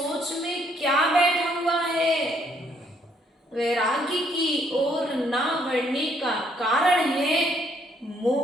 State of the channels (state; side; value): normal; both; correlation 0.69